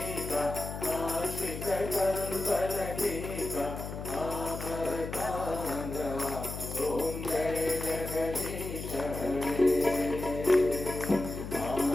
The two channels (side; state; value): left; noise; hum, 8 dB below the sound